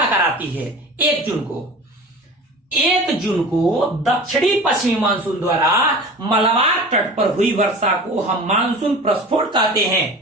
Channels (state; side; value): normal; both; correlation 0.37